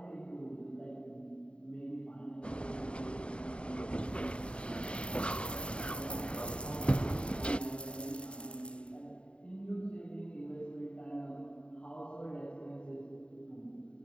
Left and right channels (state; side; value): late; right; 0.055 ms